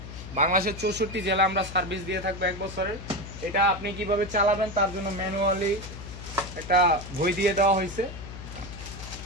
বাংলাদেশের 64 জেলা আমরা সার্ভিস দিয়ে থাকবো 1 বছরের। এটা আপনি কিভাবে চালাবেন তার জন্য ম্যানুয়ালি একটা বই দিয়ে দেওয়া হয়েছে।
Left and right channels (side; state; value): left; noise; hum, 11 dB below the sound